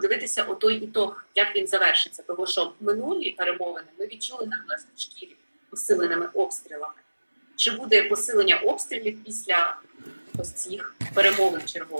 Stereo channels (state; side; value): inverted; both; correlation -1.00